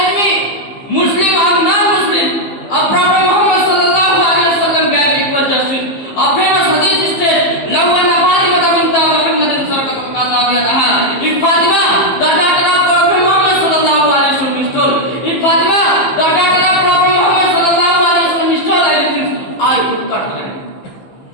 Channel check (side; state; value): right; late; 15 ms